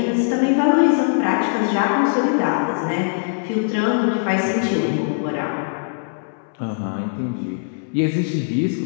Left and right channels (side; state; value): right; silent; 65 dB below the other